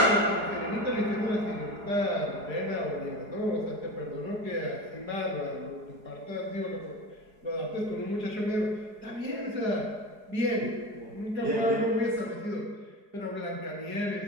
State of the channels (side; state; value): left; late; 4.8 ms